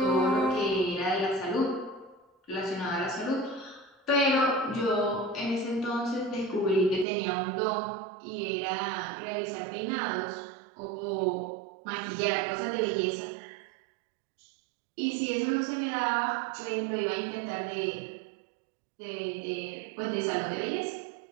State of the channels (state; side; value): drops out; left; at 7.1 s